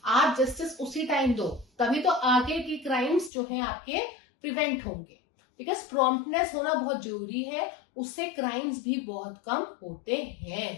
आप जस्टिस उसी टाइम दो, तभी तो आगे के क्राइम्स जो है आपके प्रिवेंट होंगे। बिकॉज प्रॉम्प्टनेस होना बहुत जरूरी है, उससे क्राइम्स भी बहुत कम होते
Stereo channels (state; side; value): drops out; right; at 3.3 s